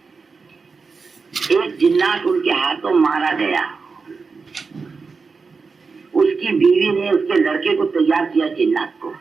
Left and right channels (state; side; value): quieter; left; 4.7 dB